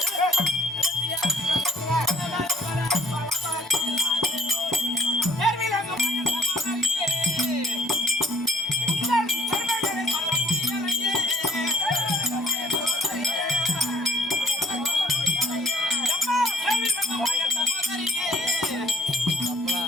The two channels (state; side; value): normal; both; correlation 0.57